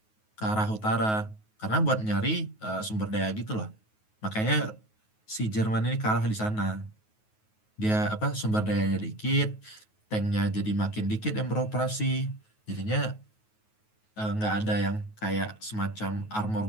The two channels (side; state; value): right; late; 9.3 ms